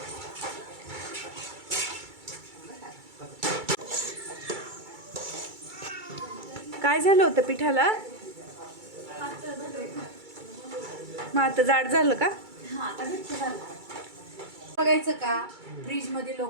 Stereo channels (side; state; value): left; late; 2.3 ms